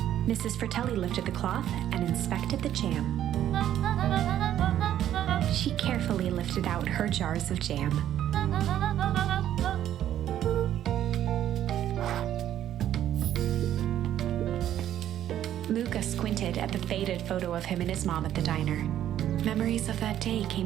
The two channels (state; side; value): quieter; left; 11.4 dB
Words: Mrs. Fratelli lifted the cloth and inspected the jam. She carefully lifted out her jars of jam. Luca squinted at the faded photo of him and his mom at the diner. Memories of that day came